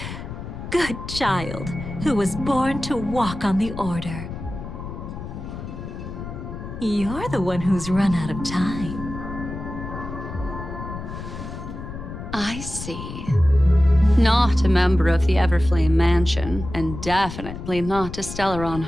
good child who was born to walk on the Order. You're the one who's run out of time. I see. Not a member of the Everflame Mansion, and definitely not a Stellaron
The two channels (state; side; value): noise; left; rumble, 9 dB below the sound